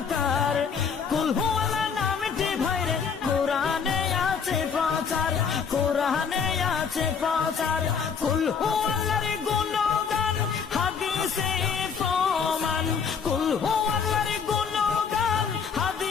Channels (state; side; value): quieter; right; 6.3 dB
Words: কুল হু আল্লাহ নামটি বাইরে কুরআনে আছে প্রচার, কুরআনে আছে প্রচার। কুল হু আল্লাহর